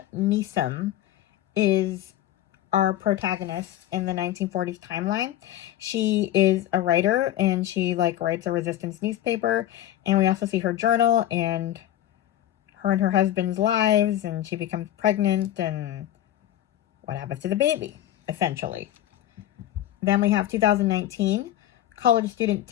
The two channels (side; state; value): right; quieter; 12.8 dB